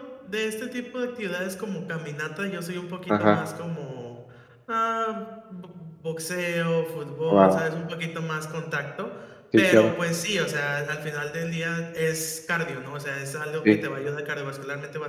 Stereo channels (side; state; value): both; identical; correlation 1.00